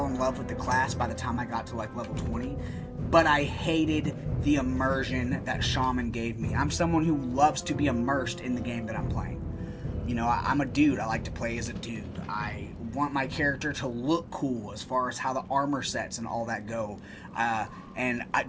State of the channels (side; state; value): both; identical; correlation 1.00